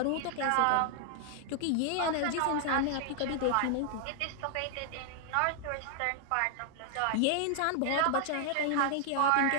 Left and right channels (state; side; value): different; both; correlation 0.00